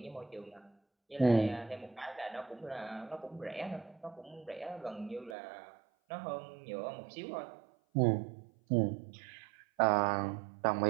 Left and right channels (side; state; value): left; drops out; at 5.4 s